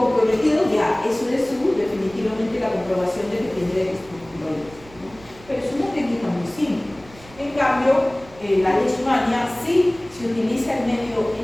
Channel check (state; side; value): noise; right; rumble, 22 dB below the sound